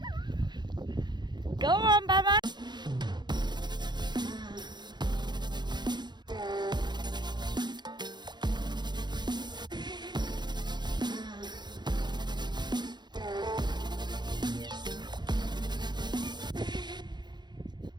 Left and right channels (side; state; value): left; late; 0.21 ms